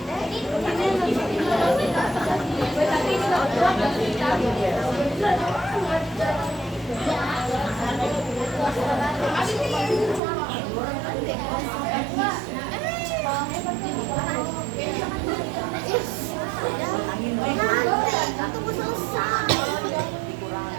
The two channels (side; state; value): left; drops out; at 10.2 s